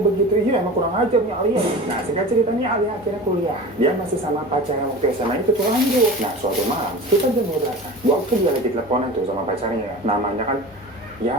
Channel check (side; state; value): both; normal; correlation 0.34